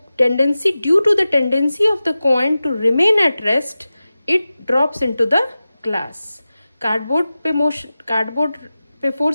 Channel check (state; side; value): inverted; both; correlation -0.95